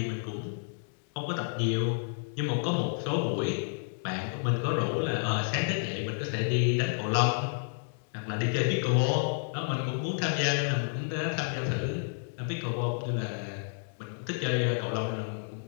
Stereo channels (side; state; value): right; silent; digital silence